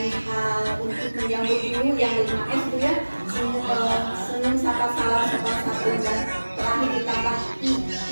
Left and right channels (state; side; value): inverted; both; correlation -1.00